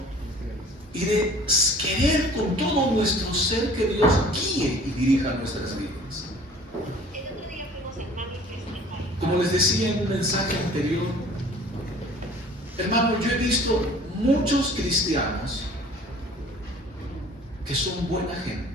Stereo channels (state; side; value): normal; both; correlation 0.49